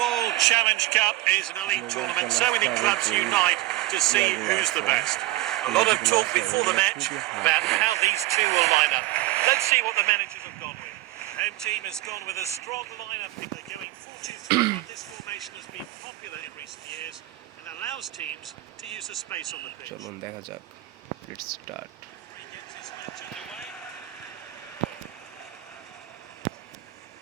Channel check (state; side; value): quieter; left; 17.3 dB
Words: Challenge Cup is an elite tournament. So many clubs unite to see who's the best. A lot of talk before the match about how these two will line up. Let's see what the managers have gone with. Home team has gone with a strong lineup. They're going 4-2-3-1. This formation has been popular in recent years and allows teams to use the space on the pitch. চলুন দেখা যাক। Let's start. He gets his match underway.